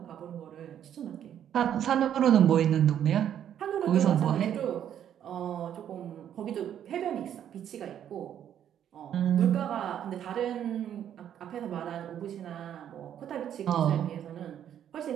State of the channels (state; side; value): quieter; left; 9.9 dB